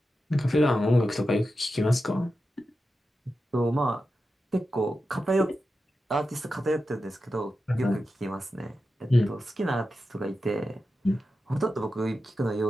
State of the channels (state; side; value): normal; both; correlation 0.91